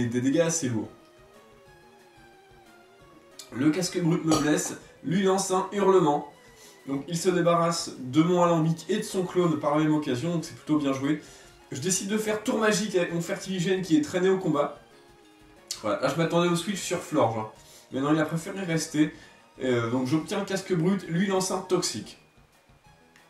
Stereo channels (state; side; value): identical; both; correlation 1.00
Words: dégâts assez lourds. Le casque brut me blesse, lui lance un hurlement. Donc il se débarrasse de mon alambic et de son clone par la même occasion, donc c'est plutôt bien joué. Je décide de faire tour magique avec mon Fertiligène qui est traîné au combat. Voilà, là je m'attendais au switch sur Florge. Hein. Mais non, il a préféré rester. Donc j'obtiens un casque brut, lui lance un toxique.